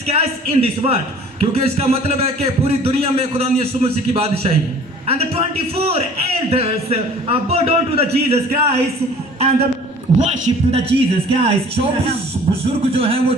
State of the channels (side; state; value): both; normal; correlation 0.49